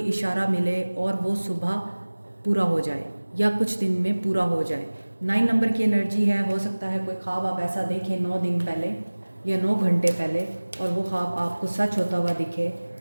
इशारा मिले, और वो सुबह पूरा हो जाए या कुछ दिन में पूरा हो जाए। 9 नंबर की एनर्जी है। हो सकता है कोई ख्वाब आप ऐसा देखें 9 दिन पहले या 9 घंटे पहले, और वो ख्वाब आपको सच होता हुआ दिखे,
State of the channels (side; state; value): both; inverted; correlation -1.00